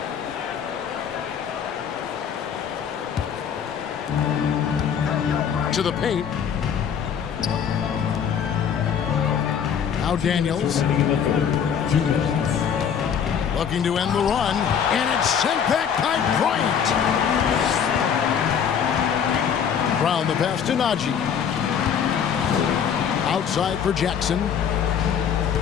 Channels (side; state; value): right; quieter; 7.8 dB